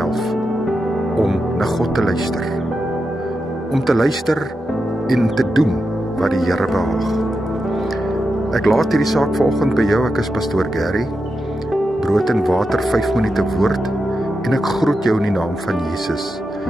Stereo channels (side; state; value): both; normal; correlation 0.88